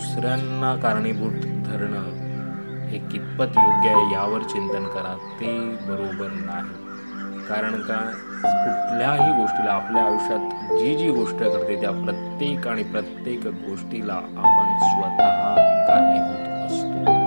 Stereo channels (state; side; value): inverted; both; correlation -1.00